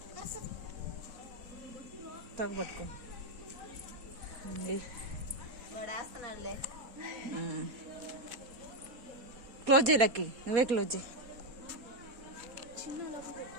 తగ్గబట్టుకో వాడేస్తున్నాడులే. క్లోజ్ చేయి లక్కి, నువ్వే క్లోజ్ చేయి.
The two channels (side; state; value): left; late; 4.2 ms